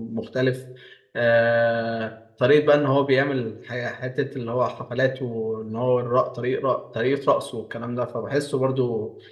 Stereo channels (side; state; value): both; identical; correlation 1.00